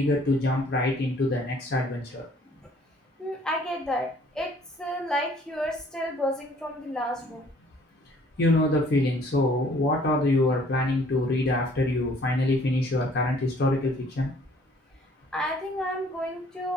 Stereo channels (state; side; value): normal; both; correlation 0.58